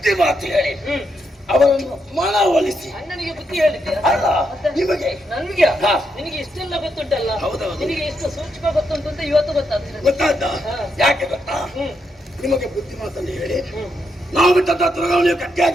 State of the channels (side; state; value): both; normal; correlation 0.80